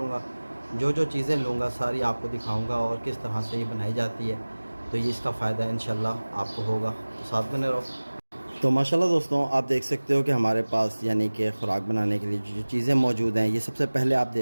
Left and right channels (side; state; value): both; inverted; correlation -1.00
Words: जो जो चीज़ें लूँगा सारी आपको दिखाऊँगा और किस तरह से ये बनाई जाती है। तो ये इसका फ़ायदा इंशाल्लाह आपको होगा, तो साथ बने रहो। तो माशाल्लाह दोस्तों, आप देख सकते हो कि हमारे पास यानी कि ख़ुराक बनाने के लिए जो चीज़ें मौजूद हैं, ये सबसे पहले आप